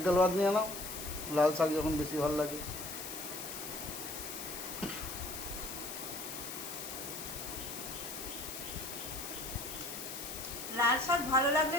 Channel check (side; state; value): left; noise; hiss, 7 dB below the sound